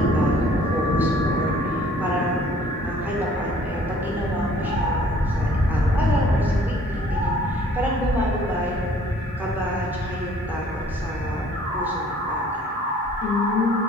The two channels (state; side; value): normal; both; correlation 0.56